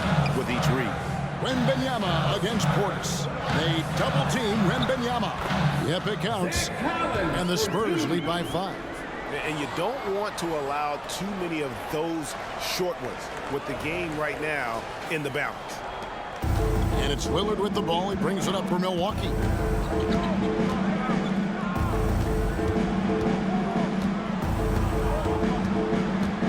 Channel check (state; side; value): identical; both; correlation 1.00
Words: with each read. Wembanyama against Portis. They double-team Wembanyama. Yep, it counts. And the Spurs lead by 5. And you don't want to allow too many of those short ones with the game right now in the balance. And it's Lillard with the ball. He brings it up for Milwaukee.